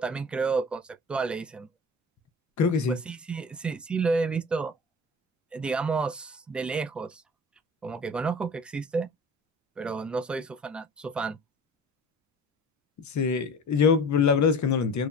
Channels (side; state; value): both; normal; correlation 0.40